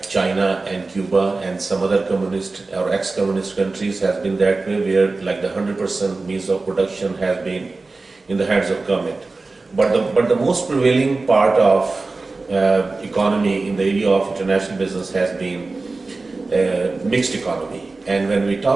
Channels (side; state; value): left; quieter; 3.6 dB